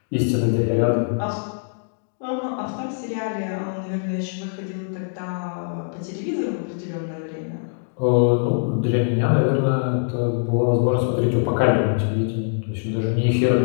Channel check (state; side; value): silent; right; digital silence